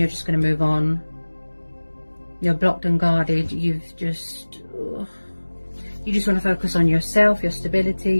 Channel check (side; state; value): both; inverted; correlation -1.00